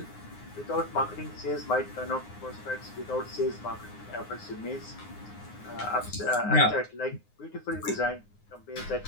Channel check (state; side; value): late; right; 9.6 ms